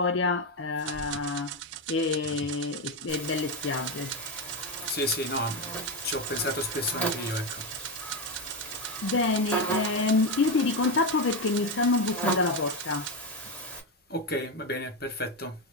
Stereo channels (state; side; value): normal; both; correlation 0.11